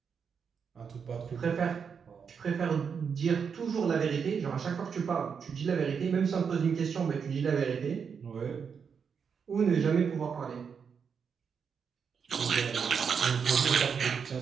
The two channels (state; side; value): quieter; left; 6.5 dB